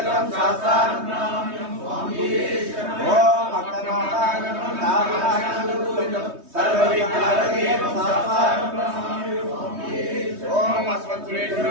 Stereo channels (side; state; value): left; late; 3.2 ms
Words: శాస్త్రాన ప్రణామ్యం ఓం అక్షరాణం నారాయణం సర్వవిజ్ఞానదేవం శాస్త్రాన ప్రణామ్యం ఓం